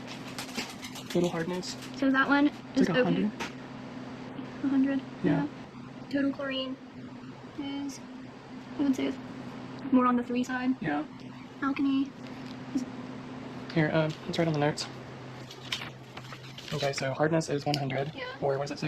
Total hardness. So that one is It's like okay. 100. 100. Yeah. Total chlorine is, I would say, it's more on the 3 side. Yeah. Alkalinity. Here, let's write on the notes. Okay, so hardness is 100. Yeah. Or what does it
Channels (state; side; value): identical; both; correlation 1.00